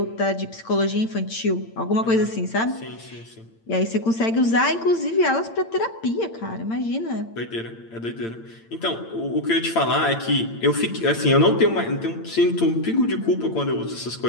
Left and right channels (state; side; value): late; right; 8.8 ms